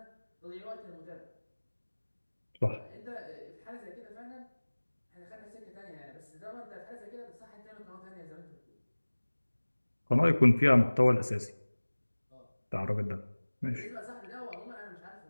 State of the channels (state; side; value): inverted; both; correlation -1.00